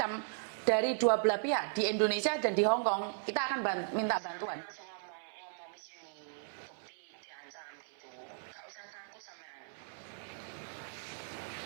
dari dua belah pihak di Indonesia dan di Hong Kong, kita akan minta sampean langsung ngomong Miss Uni, bukti diancam gitu. Gak usah takut sampean.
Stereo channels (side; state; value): left; silent; 53 dB below the other